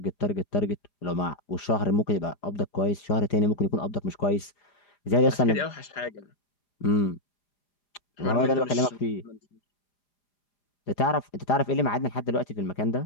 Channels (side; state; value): right; late; 4.9 ms